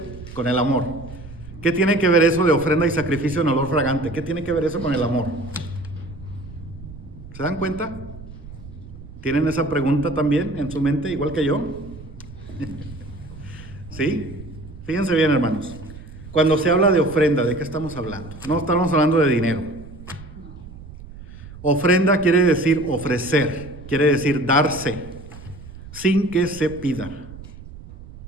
con el amor? ¿Qué tiene que ver eso de ofrenda y sacrificio en olor fragante? ¿Qué tiene que ver eso con el amor? ¿Se dan cuenta? ¿Tienen esa pregunta también en su mente, igual que yo? ¿Sí? Fíjense bien, hermanos. Cuando se habla de ofrenda, ¿de qué estamos hablando? No estamos hablando de dinero. Ofrenda quiere decir ofrecer, quiere decir darse, sin que se pida.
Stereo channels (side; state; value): right; noise; rumble, 16 dB below the sound